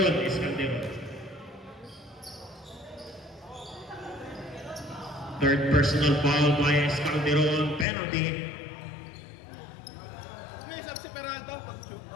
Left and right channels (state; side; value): drops out; right; at 7.9 s